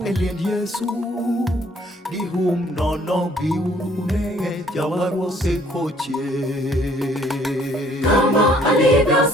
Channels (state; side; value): normal; both; correlation 0.61